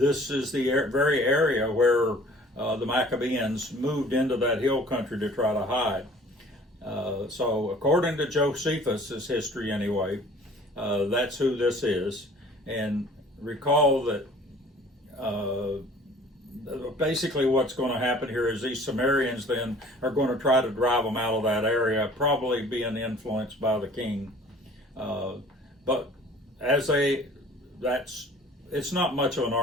is the very area where the Maccabeans moved into that hill country to try to hide. So according to Josephus' history anyway, that's who this is. And recall that basically what's going to happen here is these Sumerians then are going to try to drive them out of that area, probably being influenced by the king. But as it's not much of an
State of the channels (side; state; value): both; normal; correlation 0.50